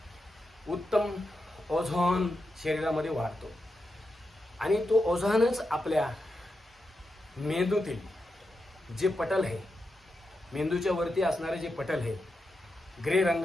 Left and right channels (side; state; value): both; normal; correlation 0.87